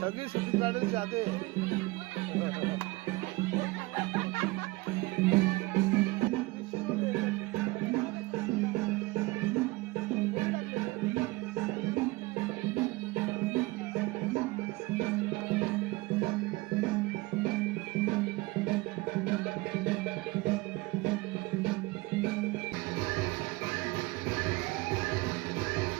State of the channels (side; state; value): left; quieter; 22.4 dB